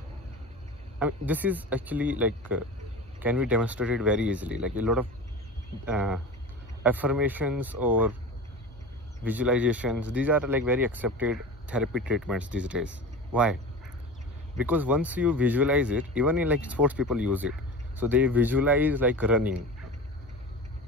I mean, this is actually like can be demonstrated very easily. Like a lot of affirmations or visualizations, these are like very accepted therapy treatments these days. Why? Because once you visualize it, even in like sports people use it, so they visualize like running.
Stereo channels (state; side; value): normal; both; correlation 0.32